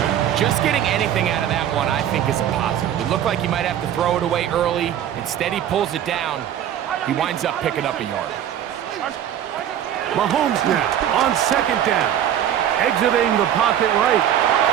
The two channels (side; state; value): left; quieter; 10.4 dB